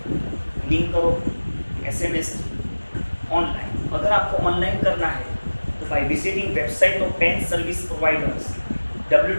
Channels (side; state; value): both; inverted; correlation -1.00